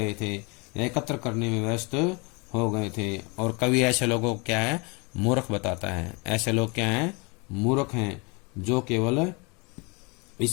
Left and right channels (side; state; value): right; quieter; 29.9 dB